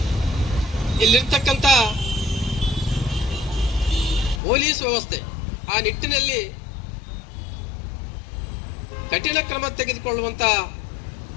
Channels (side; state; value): right; drops out; at 4.4 s